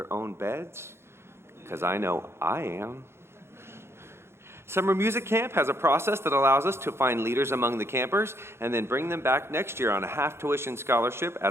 own beds, because I know I am. Summer Music Camp has a process that allows us to find leaders among the campers and then bring them back next year on a half-tuition scholarship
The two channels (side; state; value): left; late; 0.12 ms